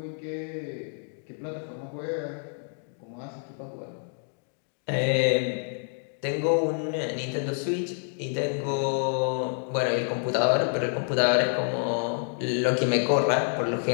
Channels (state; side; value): silent; right; 59 dB below the other